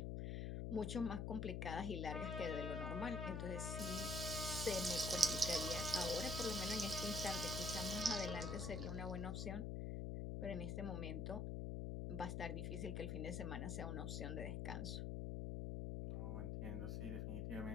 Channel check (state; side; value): noise; left; hum, 1 dB below the sound